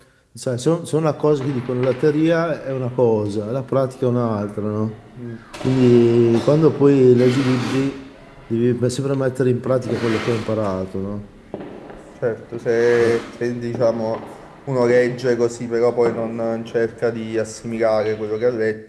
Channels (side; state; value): both; identical; correlation 1.00